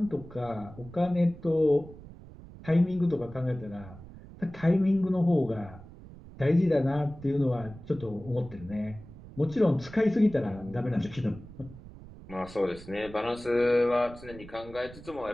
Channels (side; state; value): right; noise; rumble, 17 dB below the sound